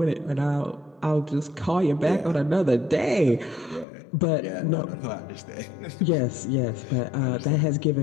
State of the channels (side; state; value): right; drops out; at 3.9 s